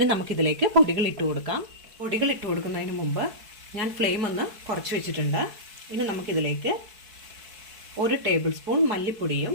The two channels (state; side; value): late; left; 4.6 ms